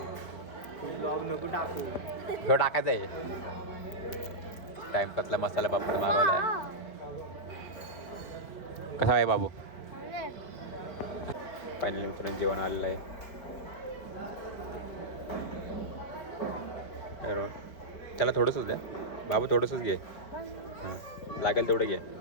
ह्यो टाकायचा आहे. टाइमपासला मसाला पापड मागवला आहे. कसा आहे बाबू? फायनली मित्रांनो जेवण आलेलं आहे. त्याला थोडंसंच द्या बाबू, थोडंसंच घे. हां लागेल तेवढं घे.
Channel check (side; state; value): right; late; 5.1 ms